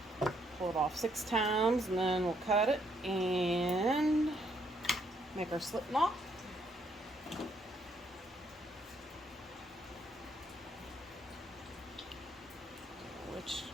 Pull it off 6 times, and then we'll cut it and make our slip knot. Which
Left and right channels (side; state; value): both; normal; correlation 0.72